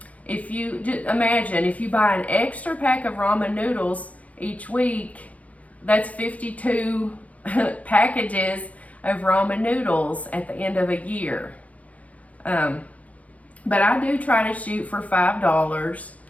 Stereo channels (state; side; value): late; right; 0.069 ms